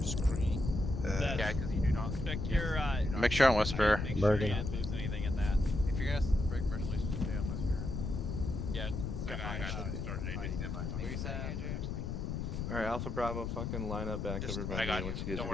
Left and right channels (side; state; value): left; noise; rumble, 3 dB below the sound